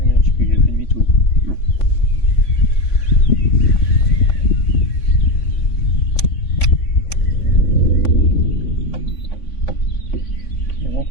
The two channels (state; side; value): late; right; 3.5 ms